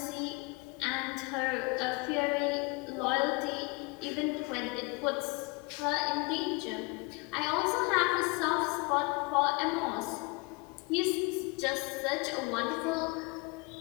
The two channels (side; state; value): right; quieter; 27.8 dB